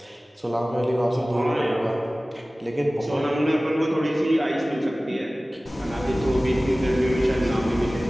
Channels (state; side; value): normal; both; correlation 0.97